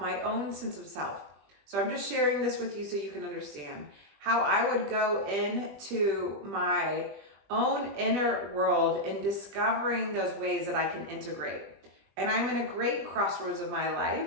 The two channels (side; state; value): left; late; 20 ms